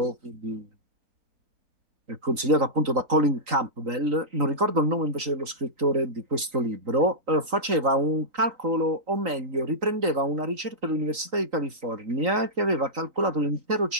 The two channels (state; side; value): late; left; 3.9 ms